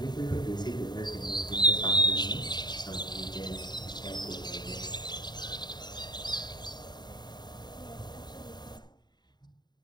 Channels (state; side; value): late; right; 0.21 ms